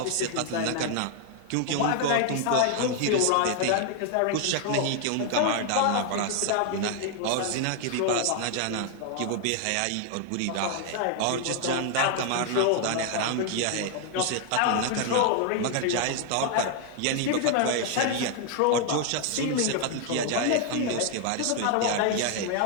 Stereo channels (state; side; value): different; both; correlation 0.00